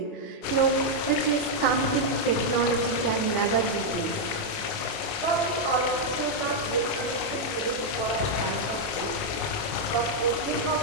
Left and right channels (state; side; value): late; right; 25 ms